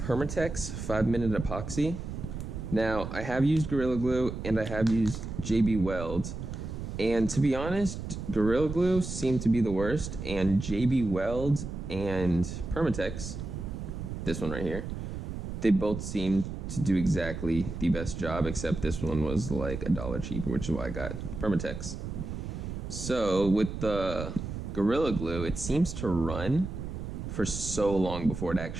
5-minute epoxy. Now, I have used Gorilla Glue and I have used JB Weld, and to be honest, Gorilla Glue seemed to be the worst, and JB Weld and Permatex, this one right here, they both seemed to do exactly the best job, except this one was like $1 cheaper, which is why I got Permatex. So with the Gorilla Glue, it seems to run for so long before it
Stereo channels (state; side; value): noise; right; rumble, 7 dB below the sound